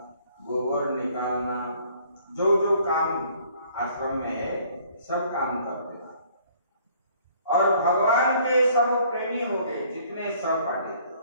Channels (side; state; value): both; inverted; correlation -0.59